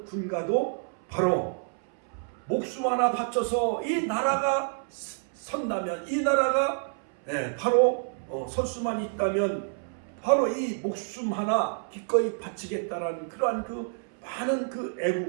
군가도 바로 목숨 하나 바쳐서 이 나라가 선다면 이 나라가 바로 설 수만 있다면 바로 이 목숨 하나 기꺼이 바치겠다라는 그러한 그 많은 그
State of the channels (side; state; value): left; silent; 59 dB below the other